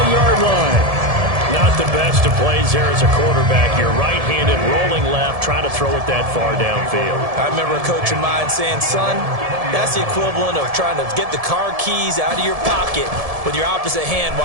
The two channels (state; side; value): late; left; 1.7 ms